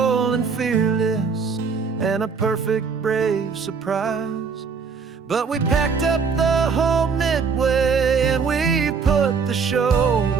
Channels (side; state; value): left; quieter; 5.5 dB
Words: and fearless and a perfect brave surprise. But we packed up the whole Midway and we put the show